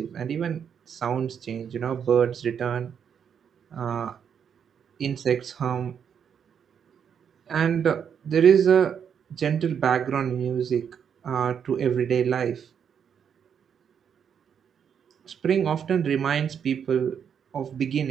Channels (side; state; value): left; quieter; 7.7 dB